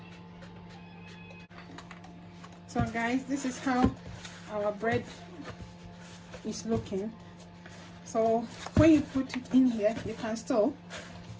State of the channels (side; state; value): both; identical; correlation 1.00